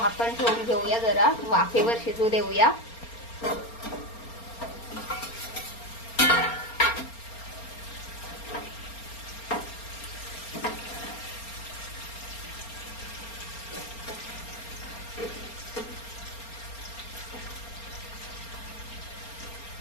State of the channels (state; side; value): late; right; 4.3 ms